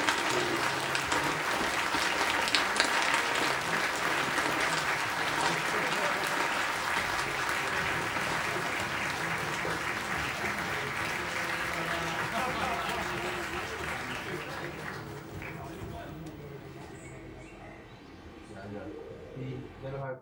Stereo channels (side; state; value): both; identical; correlation 1.00